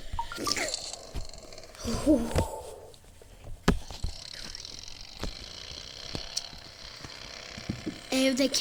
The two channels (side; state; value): both; identical; correlation 1.00